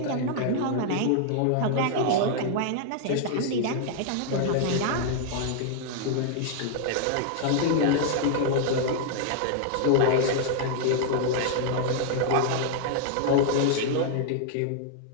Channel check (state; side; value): different; both; correlation 0.00